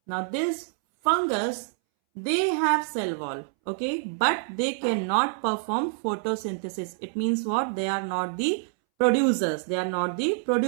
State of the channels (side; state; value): left; silent; 60 dB below the other